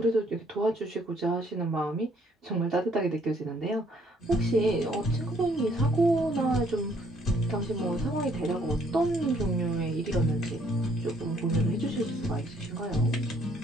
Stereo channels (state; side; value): normal; both; correlation 0.65